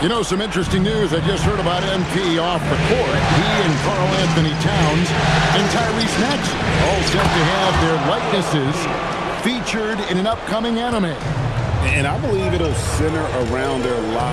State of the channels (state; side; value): identical; both; correlation 1.00